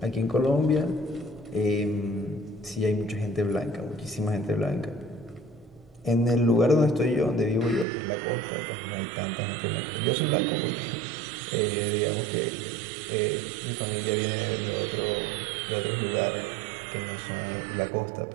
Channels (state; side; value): drops out; left; at 7.9 s